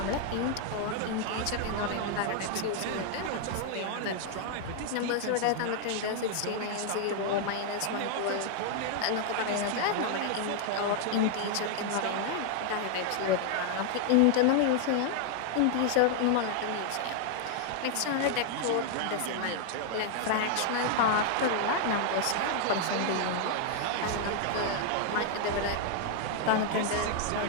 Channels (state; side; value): different; both; correlation 0.00